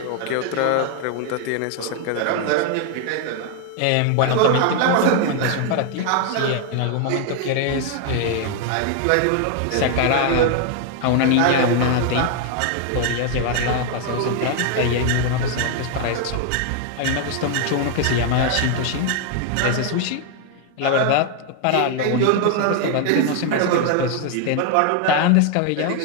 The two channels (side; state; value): both; different; correlation 0.00